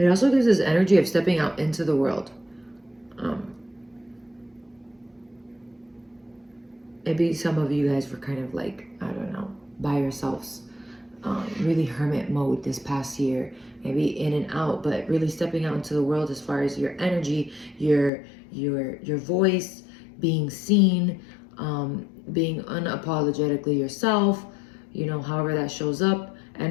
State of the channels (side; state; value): right; drops out; at 18.1 s